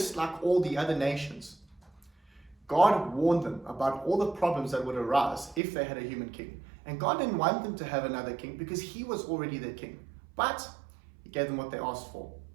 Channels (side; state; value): left; drops out; at 5.6 s